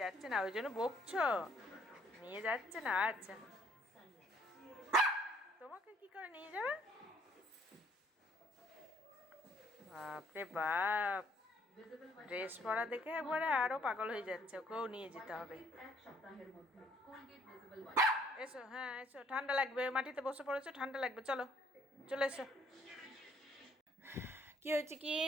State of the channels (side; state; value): both; normal; correlation 0.63